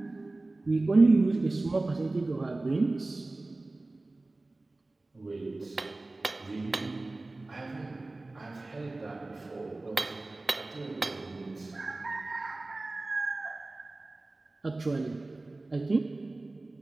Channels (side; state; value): left; quieter; 3.1 dB